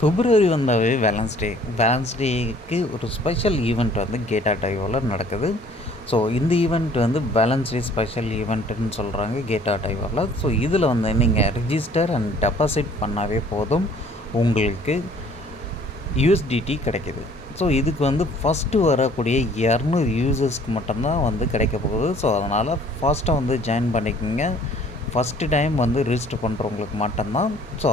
பிப்ரவரி வந்தாவே வேலன்ஸ் டேக்கு ஒரு special event வந்து கேட்டா டைவோவில் நடக்குது. ஸோ இந்த ஈவெண்ட் வந்து வேலன்ஸ் டே ஸ்பெஷல் ஈவெண்ட்டுன்னு சொல்கிறாங்க கேட்டா டைவோவில். ஸோ இதில் வந்து நீங்கள் ரிஜிஸ்டர் அண்ட் டெபாசிட் பண்ணாவே போதும், உங்களுக்கு யூஎஸ்டிடி கிடைக்கிது. ஸோ இதுக்கு வந்து ஃபஸ்ட்டு வரக்கூடிய 200 யூசர்ஸ்க்கு மட்டும்தான் வந்து கிடைக்க போகுது. ஸோ அதனால் ஃபாஸ்ட்டாக வந்து ஜாயின் பண்ணிக்கோங்க. ஃபஸ்ட்டு டைம் வந்து ரிஜிஸ்டர் பண்ணுறவங்களுக்கு மட்டும்தான். ஸோ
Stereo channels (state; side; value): normal; both; correlation 0.56